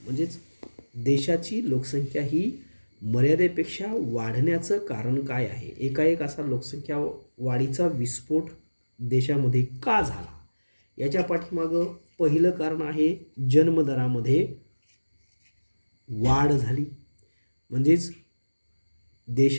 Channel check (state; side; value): inverted; both; correlation -1.00